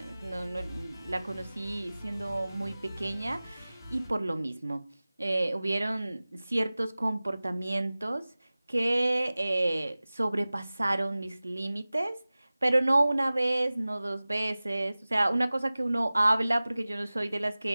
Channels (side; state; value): both; inverted; correlation -0.98